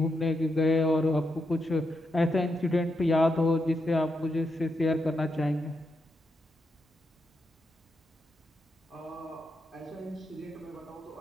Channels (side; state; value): both; normal; correlation 0.84